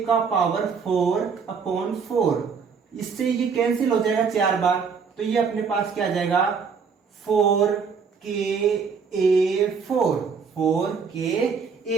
का पावर 4 अपॉन 4, इससे ये कैंसिल हो जाएगा 4 बार, तो ये अपने पास क्या आ जाएगा 4ka4,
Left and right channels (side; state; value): left; quieter; 5.8 dB